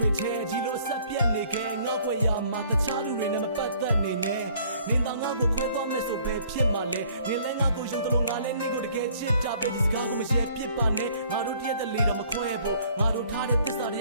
ေချဲဒီလိုဆက်ပြက်နေခဲ့ငါ့ွယ်ရမှာတခြားလူတွေနဲ့မပတ်သက်နေနဲ့နင်သာငါ့ကိုခွဲသွားမယ်ဆိုပဲဖြစ်မှာလဲနေလဲငါ့ကိုယုံတယ်လို့ငါလဲနေကိုတကယ်ချစ်တာပဲဒီစကားကိုမရှယ်ပြစ်ပါနဲ့ငါတို့တရက်တလေတော့မခွဲဖို့ငါတို့ထားတဲ့သစ္စာတ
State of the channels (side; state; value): both; inverted; correlation -0.58